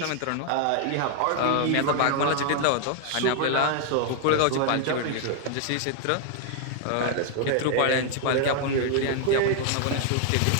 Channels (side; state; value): both; different; correlation 0.00